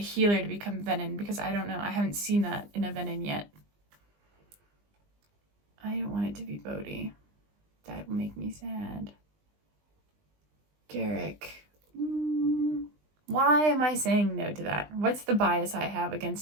to become Venom, because I don't know. I haven't seen that in a Venom yet. I don't want it to be Bodhi. That will make me sad. Garrick. Why am I saying no to that? What's the bias I have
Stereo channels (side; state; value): left; late; 20 ms